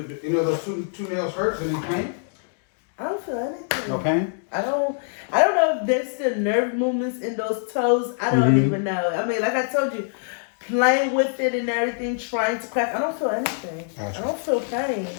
two nails hurt? Any pain? I don't feel anything. No pain? I don't know if there's still nerve movements in those toes. I don't even know. I mean, like I told you, playing with it and everything, trying to crack. I don't feel anything. Gotcha. I don't feel pain.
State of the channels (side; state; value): right; silent; digital silence